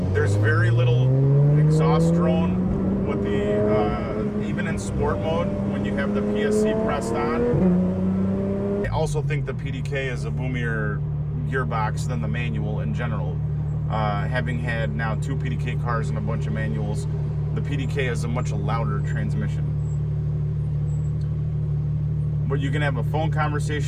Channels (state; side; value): identical; both; correlation 1.00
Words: There's very little exhaust drone with the even in sport mode when you have the PSC pressed on. I also think the PDK is a boomier gearbox than the manual in general. Having had now 2 PDK cars and a bunch of manuals, the PDK is a much louder transmission. But you can have a phone